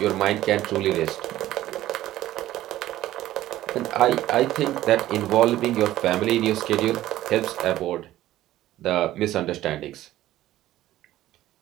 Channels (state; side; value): quieter; left; 14.5 dB